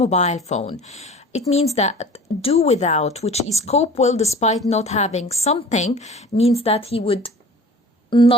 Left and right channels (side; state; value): both; normal; correlation 0.43